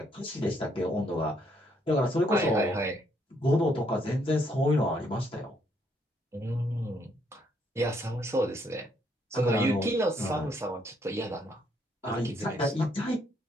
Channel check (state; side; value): normal; both; correlation 0.71